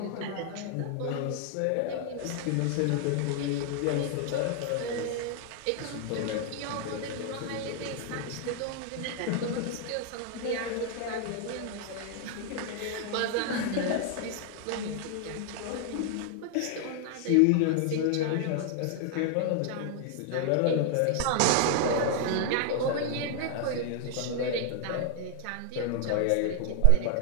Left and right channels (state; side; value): different; both; correlation 0.00